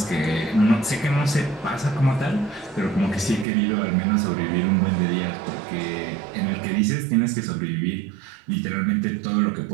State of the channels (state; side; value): drops out; left; at 3.5 s